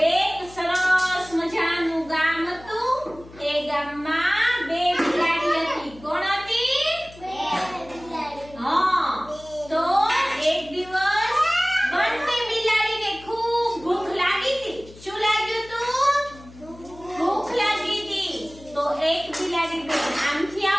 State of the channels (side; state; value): left; noise; hum, 20 dB below the sound